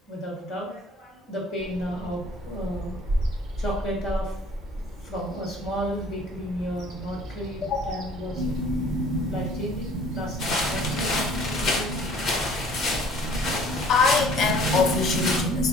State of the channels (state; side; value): normal; both; correlation 0.53